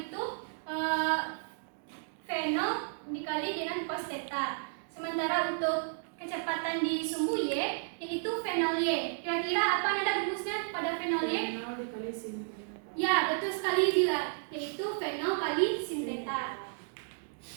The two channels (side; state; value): left; silent; digital silence